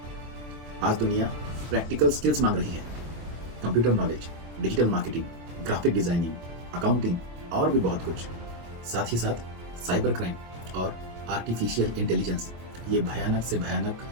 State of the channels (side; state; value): left; late; 24 ms